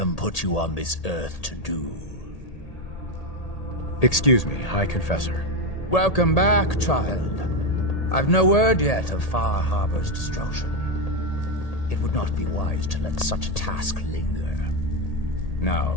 put you on this earth to do. Excuse me, High Confessor. Welcome back, child. I've no word yet of Far Habor's destruction. It would not be wise to let such a task linger. Now,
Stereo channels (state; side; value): late; right; 1.8 ms